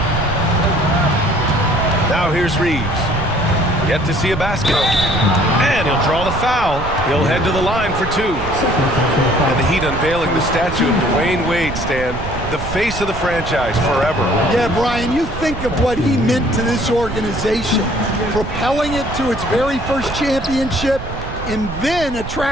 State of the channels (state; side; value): noise; right; rumble, 9 dB below the sound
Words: Now here's Reeves. Yet to see a basket. And he'll draw the foul. He'll head to the line for 2. And the Heat unveiling the statue of Dwayne Wade, Stan. The face of the franchise forever. Yeah, Brian, you think of what he meant to this organization. Propelling it to its very first championship and then